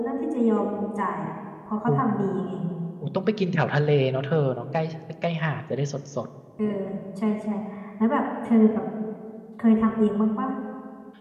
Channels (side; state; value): both; identical; correlation 1.00